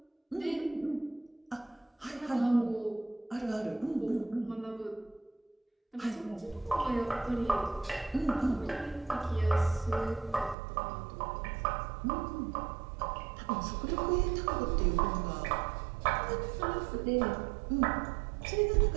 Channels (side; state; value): left; drops out; at 10.6 s